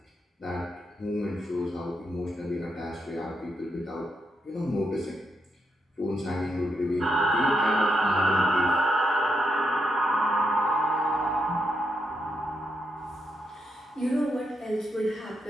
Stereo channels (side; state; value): both; normal; correlation 0.81